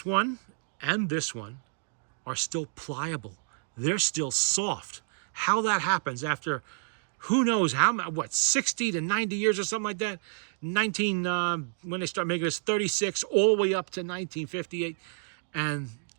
one and this one are still pliable. They're still soft. How that happens after who knows how, 60 to 90 years or something like that. When they start making this, 36 all the way up to 1958. And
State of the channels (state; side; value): silent; left; digital silence